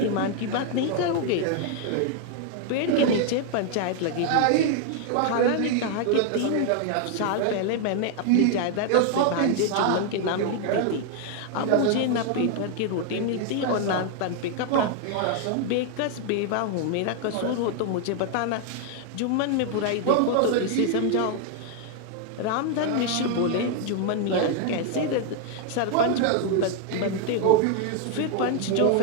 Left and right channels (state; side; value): different; both; correlation 0.00